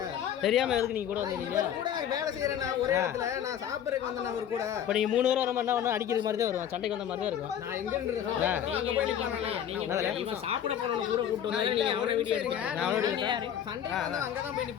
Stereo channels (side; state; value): right; quieter; 9.6 dB